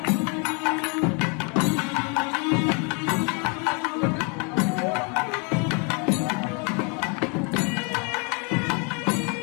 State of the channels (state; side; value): quieter; right; 34.9 dB